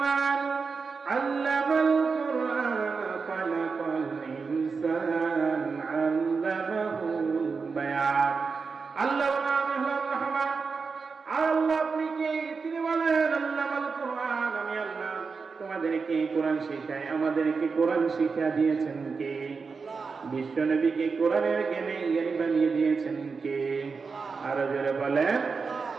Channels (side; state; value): left; quieter; 4.9 dB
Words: আল্লামাল কুরআন খালাকাল ইনসান আল্লামাহুল বায়ান। আল্লাহ আমি হলাম রহমান। আল্লাহ আপনি কে? তিনি বলেন, আল্লামাল কুরআন, আমি আল্লাহ তোমাদেরকে কোরআন শিখাই। আমাদেরকে কোরআন শিক্ষা দিয়েছেন কে? বিশ্ব নবীকে কোরআনের জ্ঞানী বানিয়ে দিয়েছেন কে? আরো জোরে বলেন।